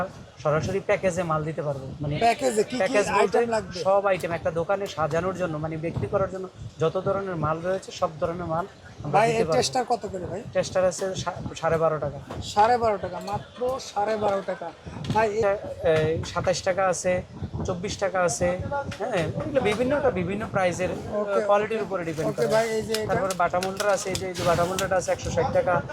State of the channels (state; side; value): identical; both; correlation 1.00